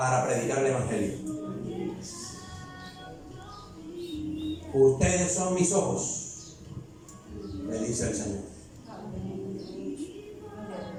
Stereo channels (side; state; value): both; identical; correlation 1.00